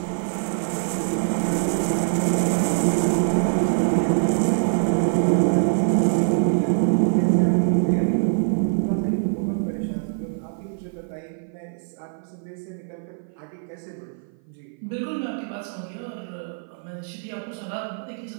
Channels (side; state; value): left; silent; 56 dB below the other